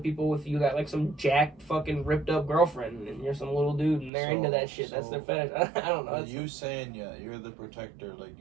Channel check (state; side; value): drops out; left; at 4.1 s